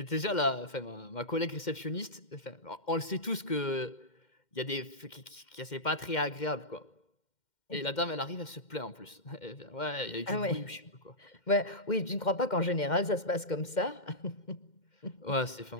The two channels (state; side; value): late; right; 2.1 ms